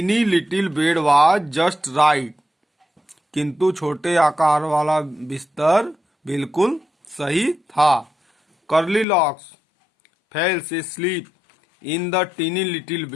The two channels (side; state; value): right; drops out; at 9.1 s